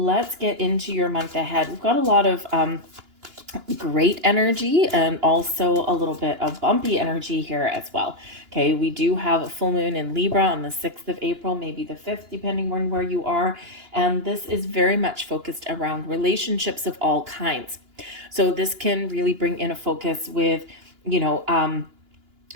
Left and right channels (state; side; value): late; left; 2.9 ms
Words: get into your month ahead. We've got a lot of great energy and also a little bit of bumpy energy here as well. Okay, we do have a full moon in Libra on the 6th of April, maybe the 5th, depending on where you are. And this is very much focused around relationships of all kinds. So this can really bring in a focus with,